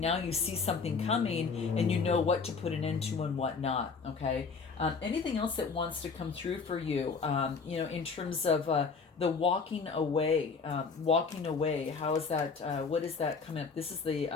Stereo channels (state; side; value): quieter; right; 5.0 dB